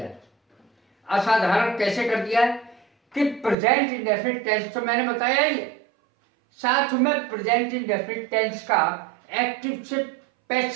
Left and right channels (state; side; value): drops out; left; at 3.6 s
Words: है। असाधारण कैसे कर दिया है कि प्रेजेंट इंडेफिनिट टेंस तो मैंने बताया ही है, साथ में प्रेजेंट इंडेफिनिट टेंस का एक्टिव से